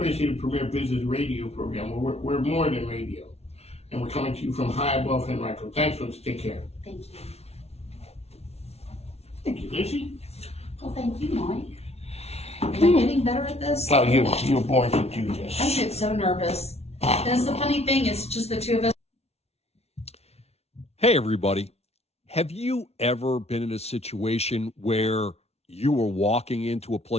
to say the premier business radio program. We're more than radio. And we're coming to you from high above Henrico. Thanks, folks. Take care. Thank you. Thank you, Lizzie. Well, thank you, Mike. Am I getting better at this? Oh, you were born to do this. I get so nervous. That's the funny thing. It's just the two of us. Hey, everybody. Have you ever been in a situation where you were walking into a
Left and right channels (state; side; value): late; right; 0.31 ms